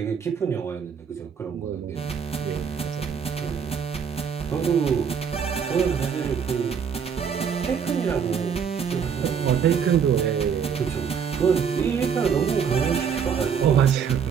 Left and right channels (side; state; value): left; quieter; 7.1 dB